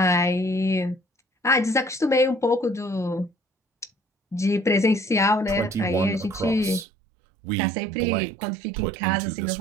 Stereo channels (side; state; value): left; drops out; at 6.9 s